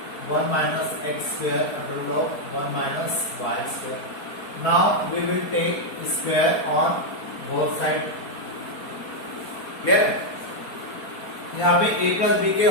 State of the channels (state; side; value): late; right; 4.4 ms